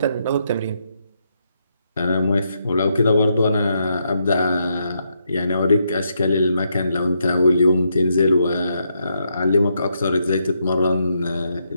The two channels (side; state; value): both; inverted; correlation -0.79